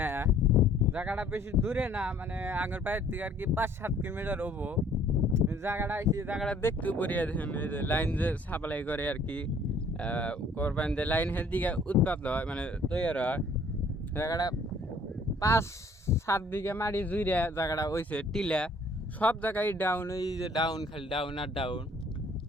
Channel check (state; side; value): normal; both; correlation 0.58